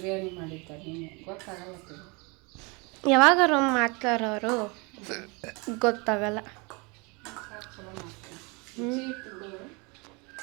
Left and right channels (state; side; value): quieter; left; 29.1 dB